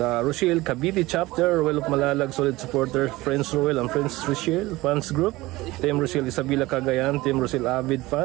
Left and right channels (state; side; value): quieter; left; 19.5 dB